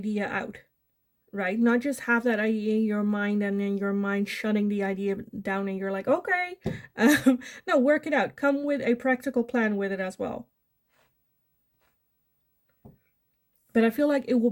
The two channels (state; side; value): identical; both; correlation 1.00